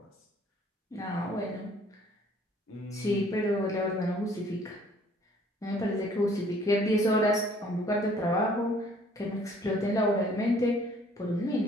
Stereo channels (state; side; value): normal; both; correlation 0.58